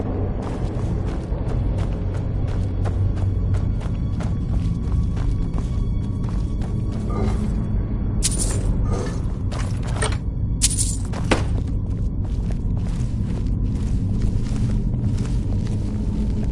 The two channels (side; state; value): both; identical; correlation 1.00